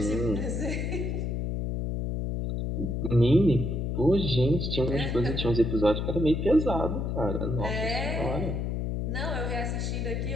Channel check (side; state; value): left; noise; hum, 1 dB below the sound